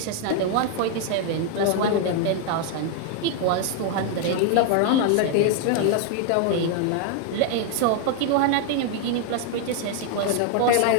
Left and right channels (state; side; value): different; both; correlation 0.00